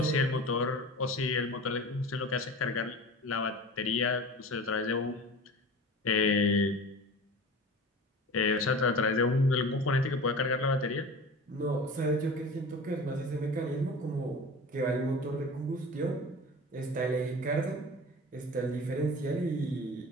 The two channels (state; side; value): normal; both; correlation 0.36